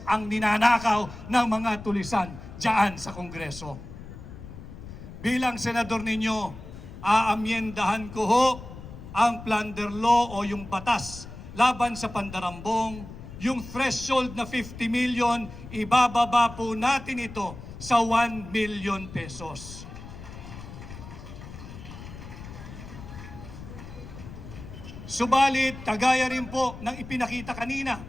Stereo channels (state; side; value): noise; left; rumble, 13 dB below the sound